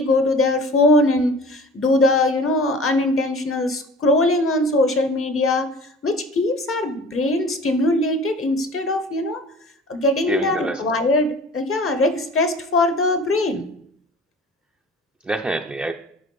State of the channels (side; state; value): both; normal; correlation 0.43